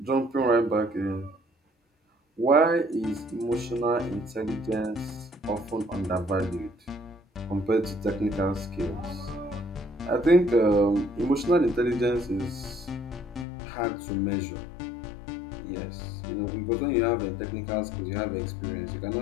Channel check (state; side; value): drops out; right; at 13.5 s